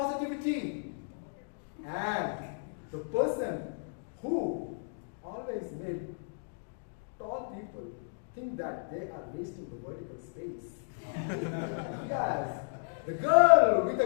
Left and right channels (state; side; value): silent; right; digital silence